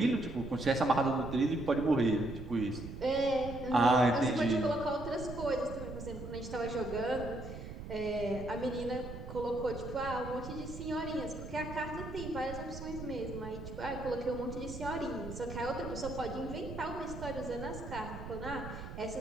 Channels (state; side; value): noise; right; rumble, 10 dB below the sound